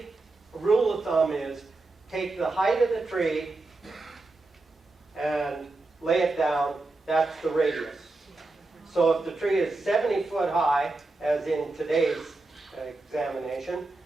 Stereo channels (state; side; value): quieter; left; 3.2 dB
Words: a rule of thumb is take the height of the tree and lay it down, that's the radius. So if the tree is 70 foot high, as in today's examination,